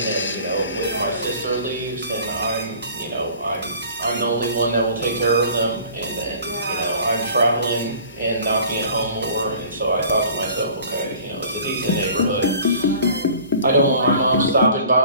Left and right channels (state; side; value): inverted; both; correlation -0.47